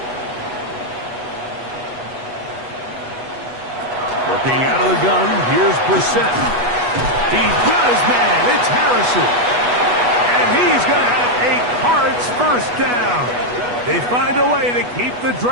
Working out of the gun, here's Brissett. He's got his man. It's Harrison. And he's going to have a Cards 1st down. They find a way to keep the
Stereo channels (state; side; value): late; left; 8.2 ms